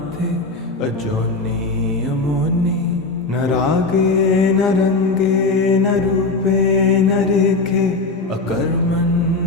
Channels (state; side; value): quieter; right; 3.6 dB